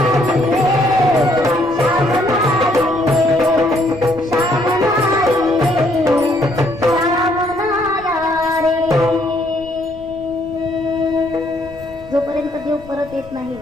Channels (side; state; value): left; noise; rumble, 21 dB below the sound